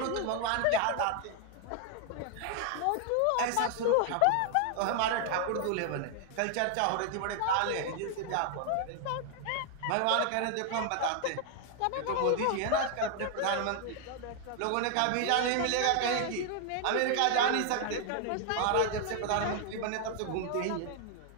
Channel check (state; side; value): different; both; correlation 0.00